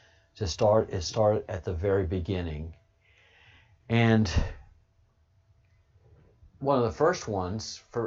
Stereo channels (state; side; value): identical; both; correlation 1.00